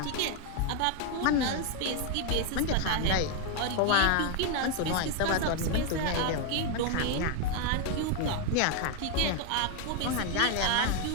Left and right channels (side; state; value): both; different; correlation 0.01